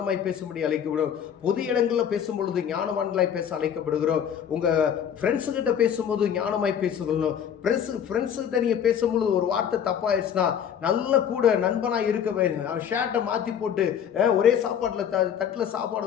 பேசும்படி அழைக்கப்படுகிறோம். பொது இடங்களில் பேசும் பொழுது ஞானவான்களாய் பேச அழைக்கப்படுகிறோம். உங்க ஃப்ரெண்ட்ஸு கிட்ட பேசும்போது ஞானமாய் பேசுகிறோம். ஃப்ரெண்ட்ஸு கிட்ட நீங்க பேசும்பொழுது ஒரு வார்த்தை தப்பாயிடுச்சுன்னா நல்ல கூட நண்பனாய் இருக்க வேண்டும். ஷர்ட்டை மாற்றி போட்டு ஒரே சாப்பாட்டில் தட்டில்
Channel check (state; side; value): quieter; right; 8.7 dB